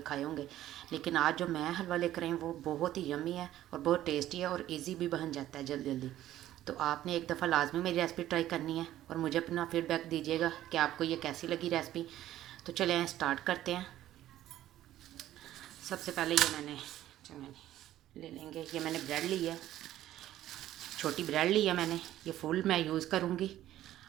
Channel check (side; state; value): left; quieter; 13.3 dB